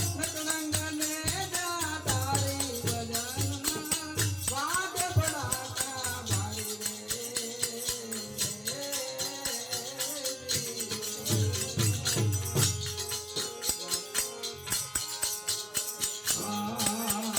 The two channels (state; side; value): identical; both; correlation 1.00